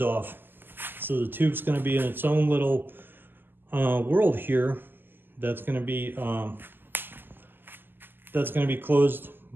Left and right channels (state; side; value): late; left; 0.093 ms